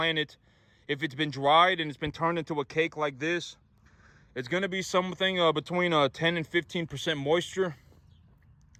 if it's been dried and it's been turned into a cake like this, it's going to be something between 10 and 15% moisture.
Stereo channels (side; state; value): both; identical; correlation 1.00